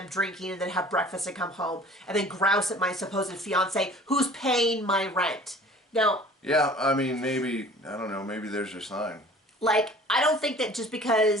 drinking and then have breakfast and come home and then grouse at my supposed fiance who's paying my rent. Now... Yeah, I mean, maybe, I don't know, maybe there's your sign. Like, I don't think that just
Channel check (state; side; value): normal; both; correlation 0.47